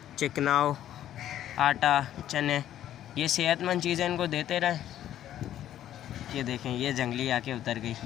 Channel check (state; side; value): quieter; right; 11.7 dB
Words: चिकनाव, आटा, चने, ये सेहतमंद चीज़ें इनको देते रहें। ये देखें ये जंगली आके उतर गई,